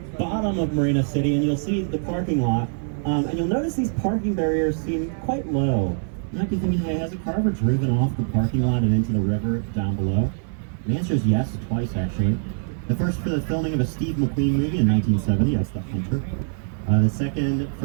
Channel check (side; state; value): left; silent; 62 dB below the other